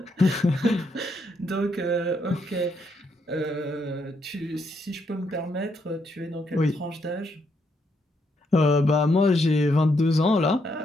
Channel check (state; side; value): normal; both; correlation 0.76